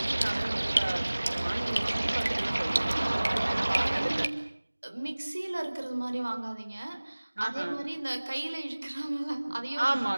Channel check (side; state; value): both; inverted; correlation -1.00